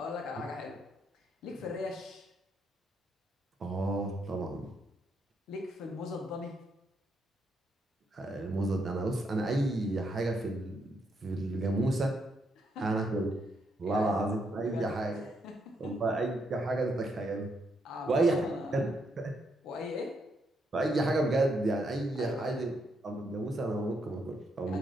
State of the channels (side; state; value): both; normal; correlation 0.77